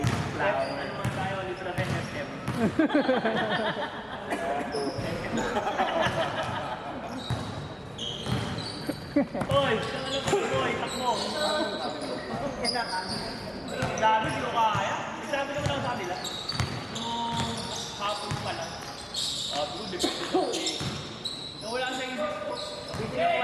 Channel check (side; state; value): both; identical; correlation 1.00